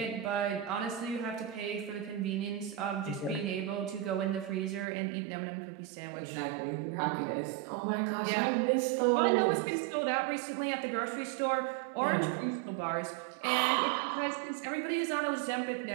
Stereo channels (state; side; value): drops out; left; at 4.9 s